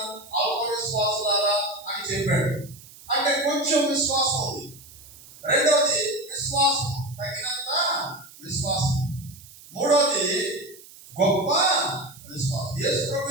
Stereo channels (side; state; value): right; noise; hiss, 20 dB below the sound